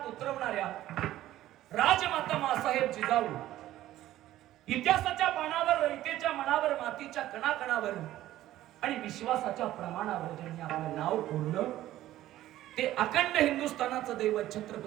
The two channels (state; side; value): quieter; left; 14.2 dB